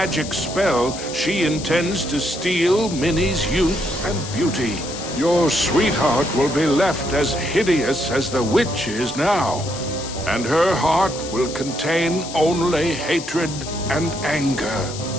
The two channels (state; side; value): noise; left; hiss, 11 dB below the sound